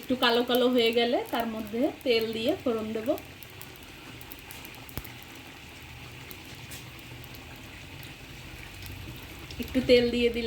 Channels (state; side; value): identical; both; correlation 1.00